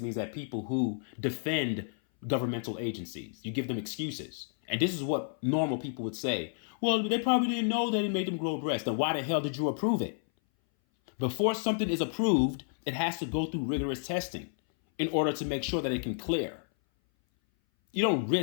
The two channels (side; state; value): right; silent; 57 dB below the other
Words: that people who defend governmental agencies, you give them excuses. And this is what normal people would say. Well, they probably didn't know that it made them grow breasts. Then why the hell did you approve it? Before something is approved, it has to go through rigorous testing in order to make sure that it can clear. You don't